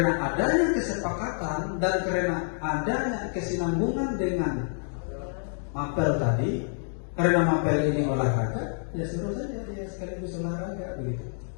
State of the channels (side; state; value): right; silent; digital silence